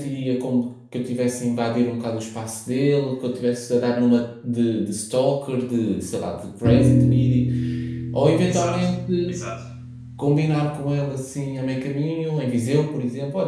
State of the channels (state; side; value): identical; both; correlation 1.00